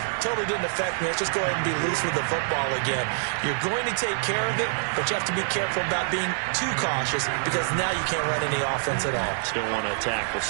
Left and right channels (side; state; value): left; silent; digital silence